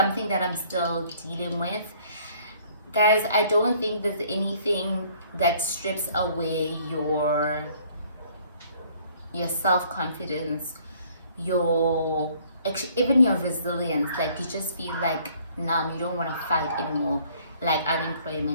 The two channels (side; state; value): both; inverted; correlation -0.59